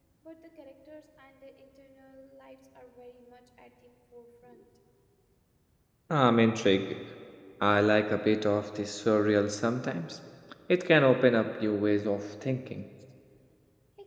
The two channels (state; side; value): identical; both; correlation 1.00